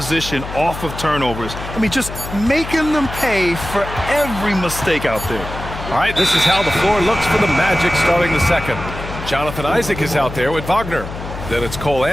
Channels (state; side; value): noise; left; hum, 10 dB below the sound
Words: off of turnovers. I mean, just making them pay for every mistake out there. All right, this is how the floor looks for the Magic starting the second. Jonathan Isaac is out there with Wagner. Then it's Cole